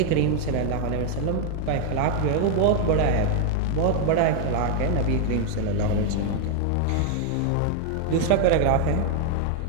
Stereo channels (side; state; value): both; different; correlation 0.00